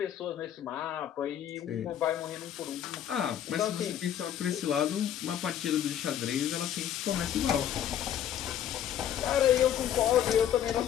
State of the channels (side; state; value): right; quieter; 10.2 dB